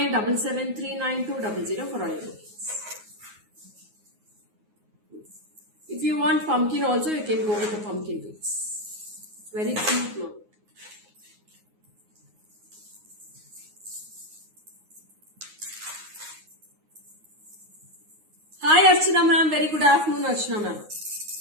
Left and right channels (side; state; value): left; late; 9.5 ms